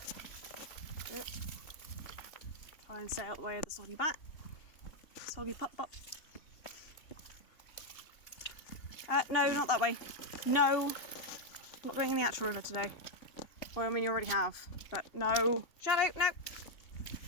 Yep. Try and stay out the way of the soggy bat. Soggy pop pop. No, not that way. No, I'm not going in the actual river today. Well, I mean, you already have, but no. Shadow, no.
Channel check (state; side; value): late; right; 2.8 ms